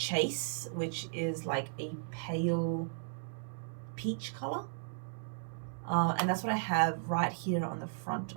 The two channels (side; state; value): left; silent; 54 dB below the other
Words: which is like a pale peach color. And that's what I have right here on the front